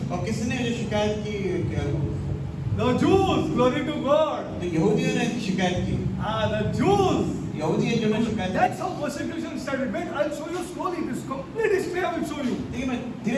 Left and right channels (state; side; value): identical; both; correlation 1.00